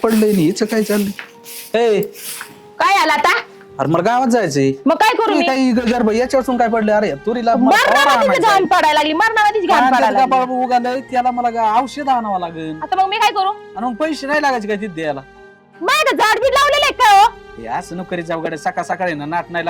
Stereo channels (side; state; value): both; identical; correlation 1.00